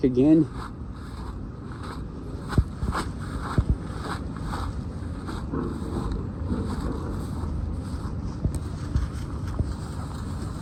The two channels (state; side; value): identical; both; correlation 1.00